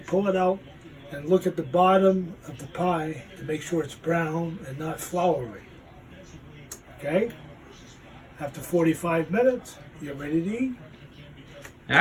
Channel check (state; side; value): identical; both; correlation 1.00